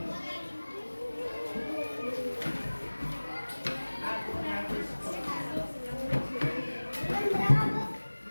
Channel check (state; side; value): inverted; both; correlation -1.00